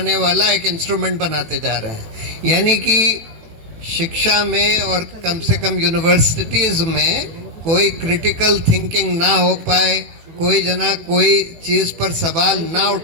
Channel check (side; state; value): left; late; 18 ms